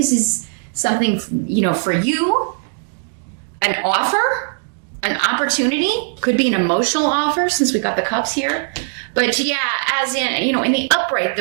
is something, for you, an offer, an opportunity, could be an emotional offer since we got the cups here. But yeah, as in, in the upright,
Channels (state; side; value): silent; left; digital silence